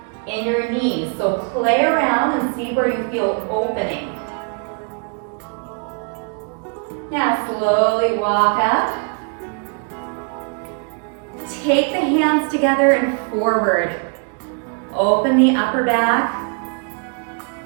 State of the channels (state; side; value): quieter; left; 37.5 dB